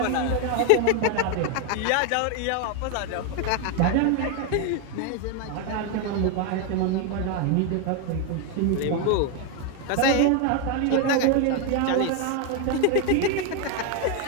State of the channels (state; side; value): different; both; correlation 0.01